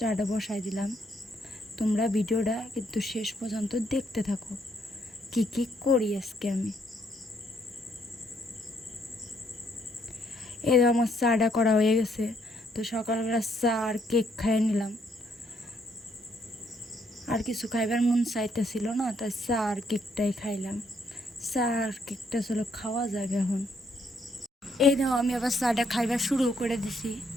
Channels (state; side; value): normal; both; correlation 0.71